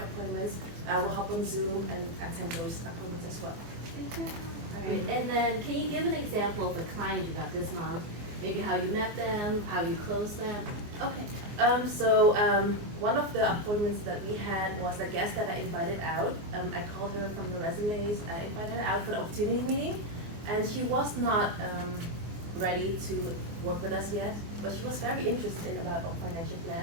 I will hop on Zoom and attend those appointments as well. All right, and then can you give an example of a client you got this month? Maybe how you met them, how you closed them? Okay. One of the appointments that we had was a guest that I invited out. I called her from the resumes. I invited her out for the opportunity meeting, and she was not ready to work with us yet, but she was very interested about our financial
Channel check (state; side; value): late; left; 24 ms